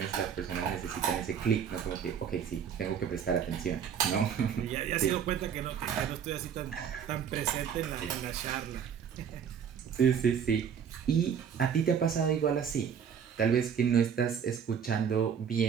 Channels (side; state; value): left; quieter; 7.6 dB